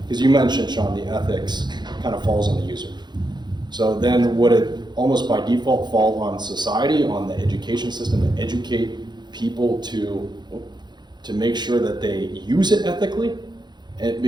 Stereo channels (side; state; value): left; late; 0.21 ms